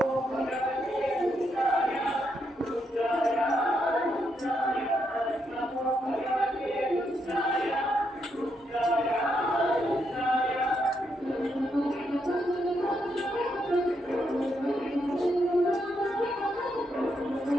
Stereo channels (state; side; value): normal; both; correlation 0.79